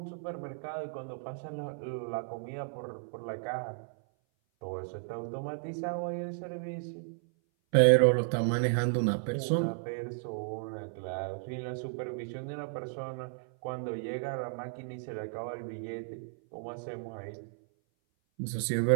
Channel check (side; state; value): left; silent; 55 dB below the other